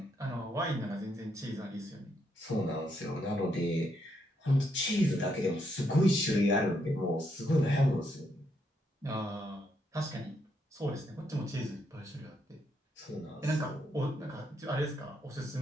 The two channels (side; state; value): both; normal; correlation 0.76